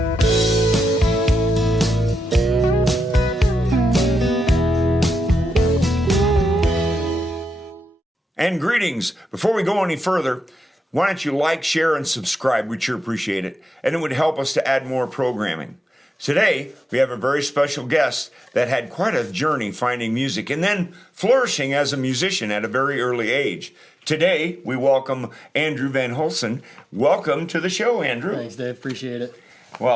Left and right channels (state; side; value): normal; both; correlation 0.88